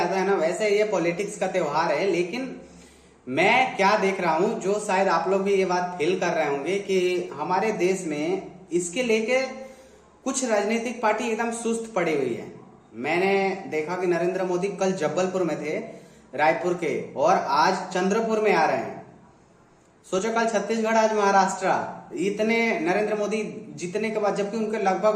है ना, वैसे ये पॉलिटिक्स का त्योहार है। लेकिन मैं क्या देख रहा हूं, जो शायद आप लोग भी ये बात फील कर रहे होंगे कि हमारे देश में इसके लेके कुछ राजनीतिक पार्टी एकदम सुस्त पड़ी हुई है। मैंने देखा कि नरेंद्र मोदी कल जबलपुर में थे, रायपुर के, और आज चंद्रपुर में आ रहे हैं। सोचो, कल छत्तीसगढ़, आज महाराष्ट्र। इतने नरेंद्र मोदी जीतने के बाद, जबकि उनके लगभग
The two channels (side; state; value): both; identical; correlation 1.00